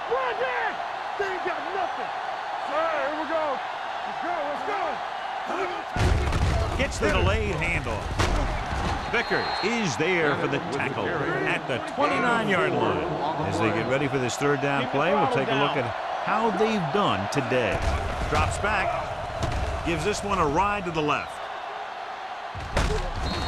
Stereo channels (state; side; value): identical; both; correlation 1.00